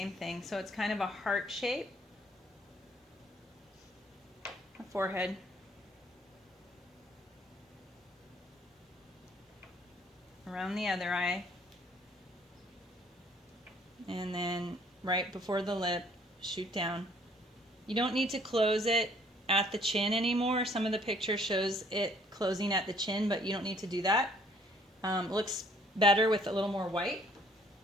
thing. So it's kind of a heart shape. A forehead. Around the other eye. And then right before the lip, shoot down. You don't need to close it at the chin anymore. Some of the picture shows it closing at the chin, but you don't need to do that. Looks better with a little more white.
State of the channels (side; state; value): both; normal; correlation 0.61